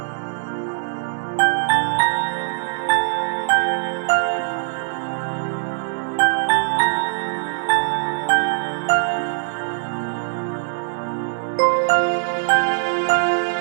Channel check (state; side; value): silent; left; digital silence